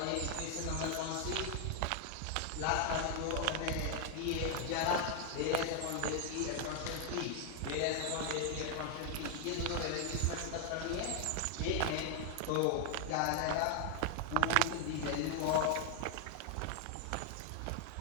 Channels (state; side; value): different; both; correlation 0.00